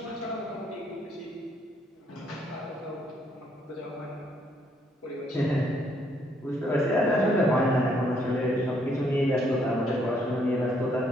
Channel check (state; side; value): normal; both; correlation 0.70